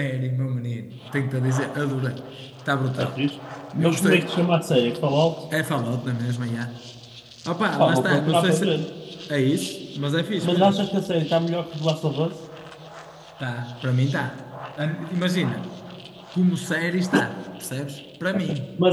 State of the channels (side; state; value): both; identical; correlation 1.00